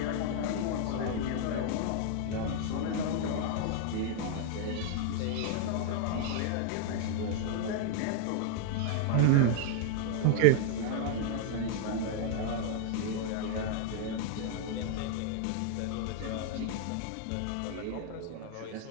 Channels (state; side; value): different; both; correlation 0.00